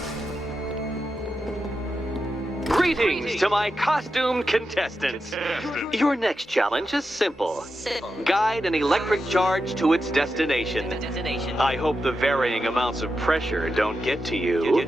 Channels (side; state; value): both; normal; correlation 0.89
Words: Greetings to my costumed contestants. Your next challenge is simple. Guide an electric charge to its destination. I hope the varying amounts of pressure don't get to you.